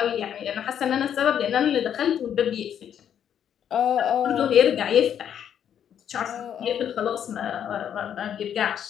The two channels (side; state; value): right; quieter; 9.2 dB